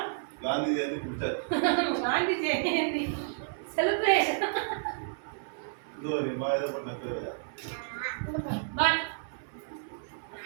Gandhi Jayanti celebration. But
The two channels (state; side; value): silent; left; 57 dB below the other